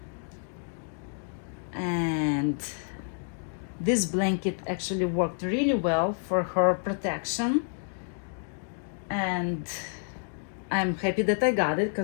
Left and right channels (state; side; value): silent; right; digital silence